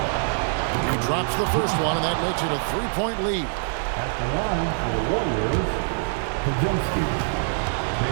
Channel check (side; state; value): left; silent; digital silence